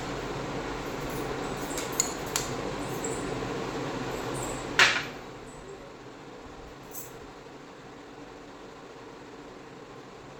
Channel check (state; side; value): identical; both; correlation 1.00